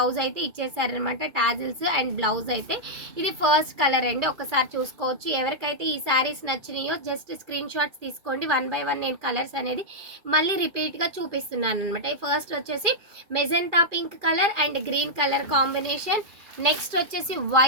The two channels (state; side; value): late; left; 2.4 ms